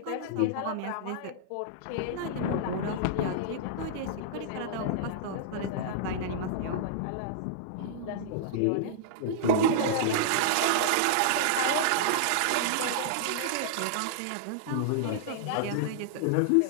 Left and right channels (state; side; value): different; both; correlation -0.02